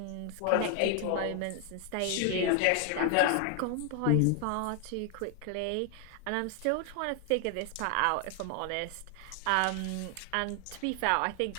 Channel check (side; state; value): both; different; correlation 0.00